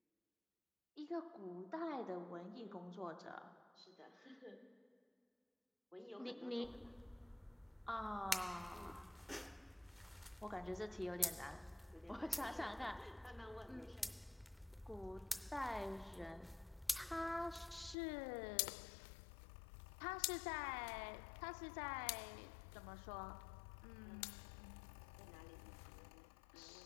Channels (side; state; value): right; drops out; at 17.9 s